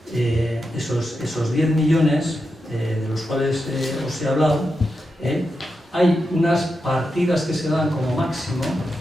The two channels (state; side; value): normal; both; correlation 0.87